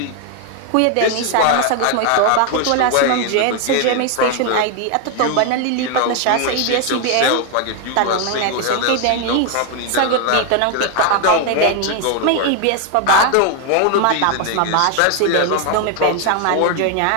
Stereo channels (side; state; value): both; different; correlation 0.01